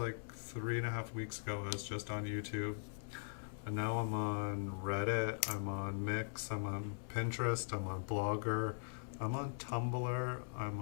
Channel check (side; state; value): right; silent; digital silence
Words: 3.5 weeks ago, I was just on YouTube. And now I'm on Reddit, I'm on Mix, I'm on Pinterest, I'm on Blogger, I'm on Tumblr, I'm